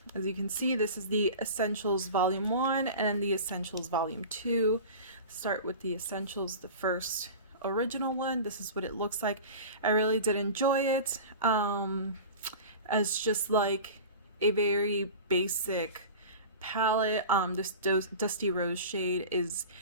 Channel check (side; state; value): both; inverted; correlation -0.35